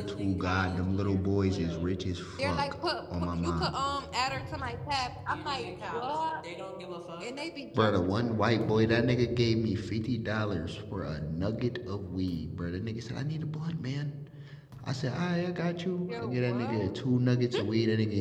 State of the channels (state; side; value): identical; both; correlation 1.00